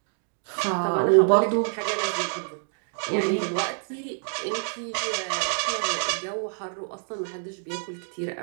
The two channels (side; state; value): left; silent; digital silence